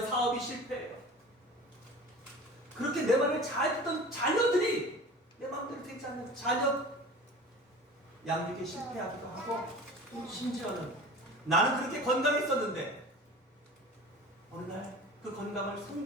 사업이 실패해요. 그렇게 내 말을 잘 듣던 자녀들이 내 마음대로 되지 않는 자녀 양육에 실패하기도 하고, 심지어는 나는 그렇게 건강했었는데 어느 날 그 건강을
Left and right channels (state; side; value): normal; both; correlation 0.39